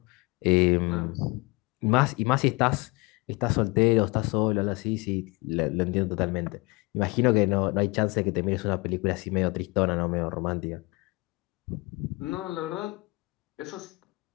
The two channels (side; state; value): right; quieter; 25.7 dB